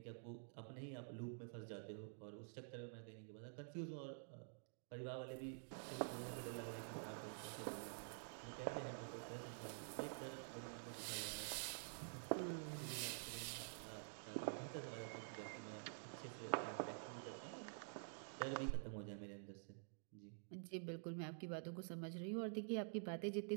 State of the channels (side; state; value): left; silent; digital silence